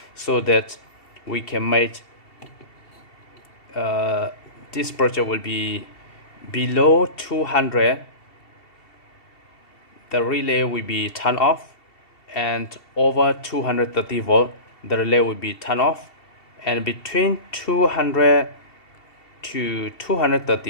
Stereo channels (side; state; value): right; late; 2.7 ms